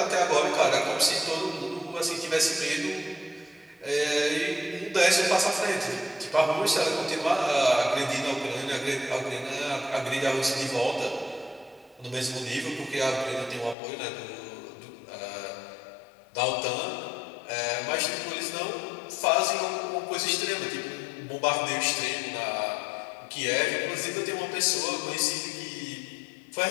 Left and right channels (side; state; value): right; drops out; at 13.8 s